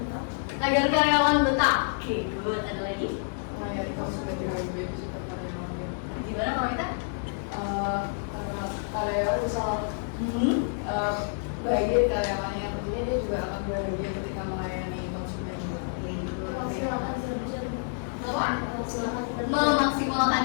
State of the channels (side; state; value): right; silent; 59 dB below the other